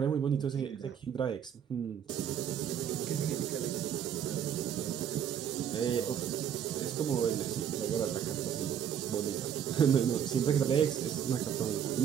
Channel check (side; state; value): left; quieter; 8.8 dB